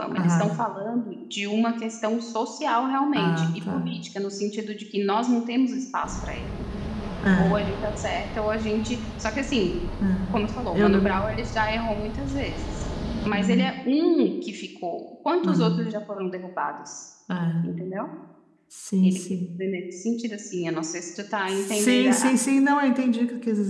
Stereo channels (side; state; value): both; identical; correlation 1.00